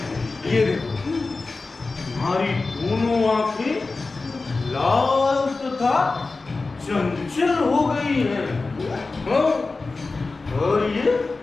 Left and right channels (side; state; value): right; quieter; 3.7 dB